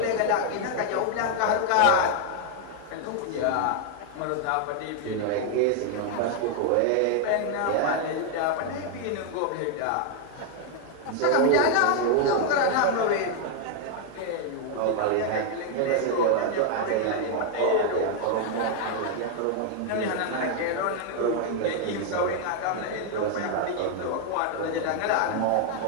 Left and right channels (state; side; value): different; both; correlation 0.00